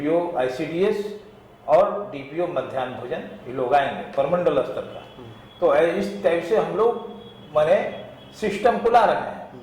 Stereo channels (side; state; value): both; identical; correlation 1.00